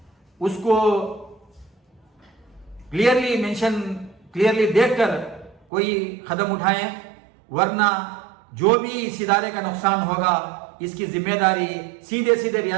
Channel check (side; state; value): left; drops out; at 5.7 s